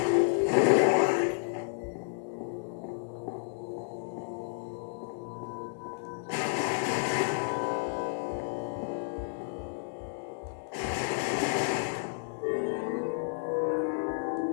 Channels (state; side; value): silent; right; digital silence